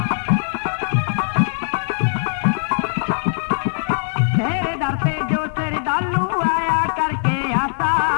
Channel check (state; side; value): silent; right; digital silence